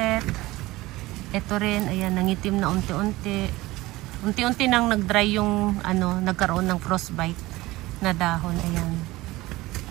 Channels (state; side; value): quieter; left; 19.1 dB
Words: Ito rin, ayan, nangitim na unti-unti. Unti-unti nang nag-dry yung nagkaroon ng frostbite na dahon. Ayan.